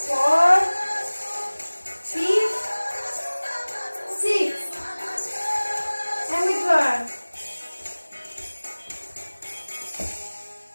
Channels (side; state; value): both; inverted; correlation -1.00